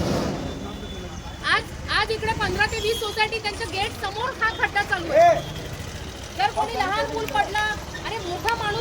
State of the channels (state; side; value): identical; both; correlation 1.00